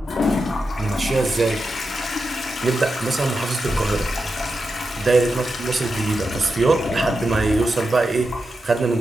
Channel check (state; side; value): normal; both; correlation 0.89